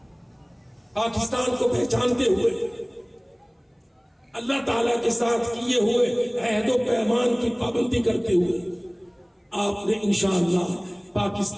پاکستان کو پہچانتے ہوئے، اللہ تعالیٰ کے ساتھ کیے ہوئے عہد و پیمان کی پابندی کرتے ہوئے آپ نے انشاءاللہ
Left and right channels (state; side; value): identical; both; correlation 1.00